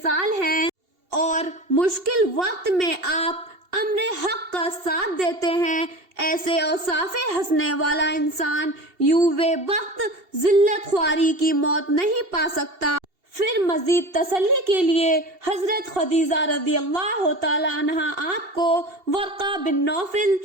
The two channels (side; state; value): left; late; 2.7 ms